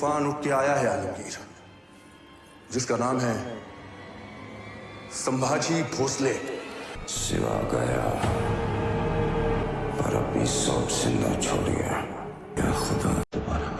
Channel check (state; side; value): identical; both; correlation 1.00